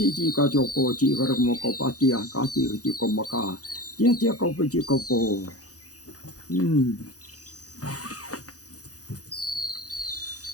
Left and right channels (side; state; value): right; late; 0.67 ms